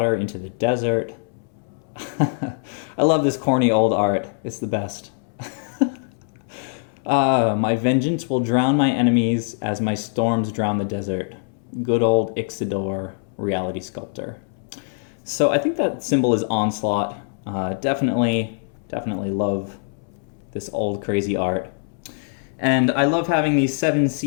into the desert. I love this corny old art. It's the best. My vengeance will drown my enemies as my storms drown the desert. Good old Ixidor, Reality Sculptor. So I think that symbol is Onslaught. Definitely love this old crazy art. And I love having these 7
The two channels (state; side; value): silent; right; 64 dB below the other